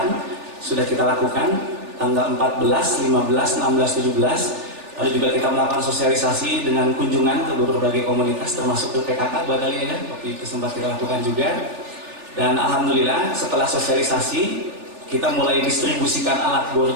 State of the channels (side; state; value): left; late; 3.4 ms